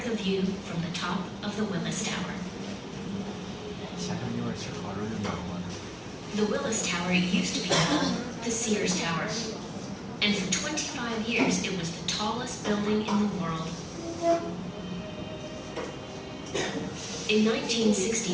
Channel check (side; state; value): both; identical; correlation 1.00